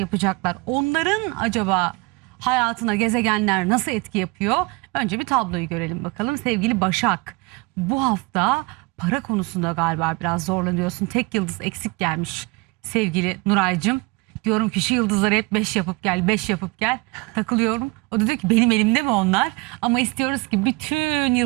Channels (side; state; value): left; quieter; 26.5 dB